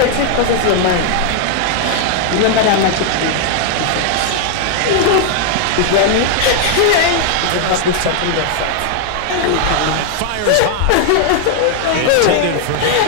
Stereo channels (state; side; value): different; both; correlation 0.00